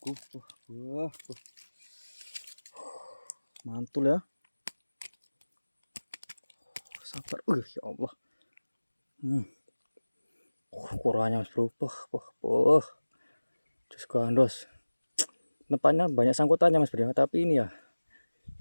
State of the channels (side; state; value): both; inverted; correlation -1.00